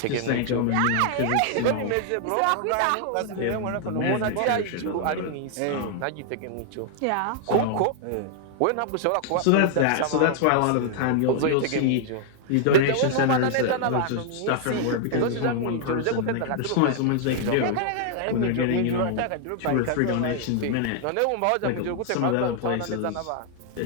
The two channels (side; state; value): both; different; correlation 0.00